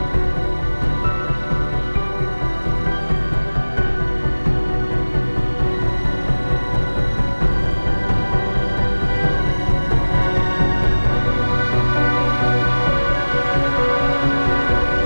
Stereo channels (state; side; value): inverted; both; correlation -1.00